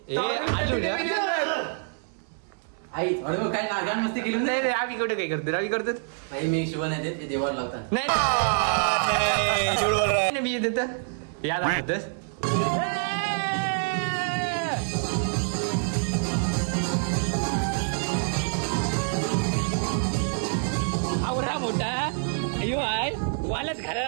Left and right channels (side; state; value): left; silent; 61 dB below the other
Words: आई थोडं काय नागान मस्ती केली नाही रे आम्ही कुठे काय करतो आम्ही करतो भाई मी शिवण येते ते देवाला लावतात. नाही मी देत याद आठवतस आवरा मोठा अयो आहे वालच